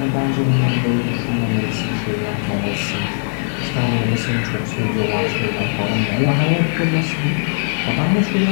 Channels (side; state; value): right; silent; digital silence